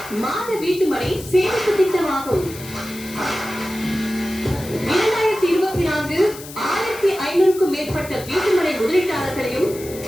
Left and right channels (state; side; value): noise; left; hiss, 15 dB below the sound